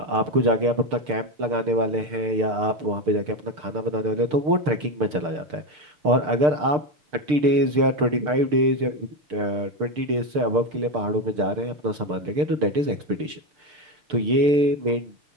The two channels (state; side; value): late; left; 6.7 ms